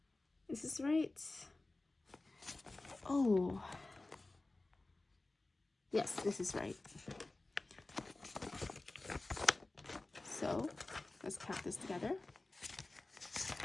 Is this right? Oh, yes, this is right. So let's count this together.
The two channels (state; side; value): quieter; right; 3.1 dB